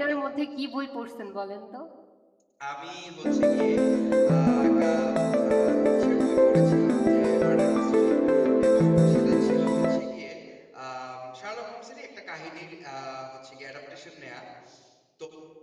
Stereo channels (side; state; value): both; identical; correlation 1.00